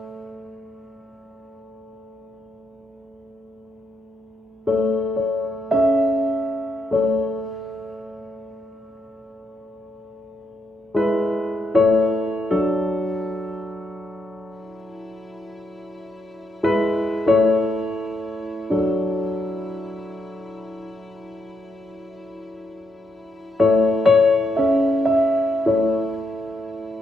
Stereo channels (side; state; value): both; normal; correlation 0.79